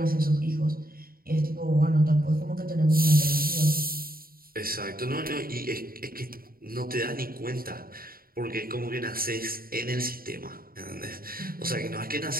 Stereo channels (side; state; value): left; late; 0.43 ms